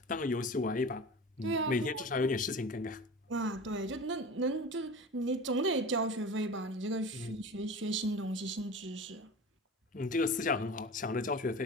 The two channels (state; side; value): normal; both; correlation 0.34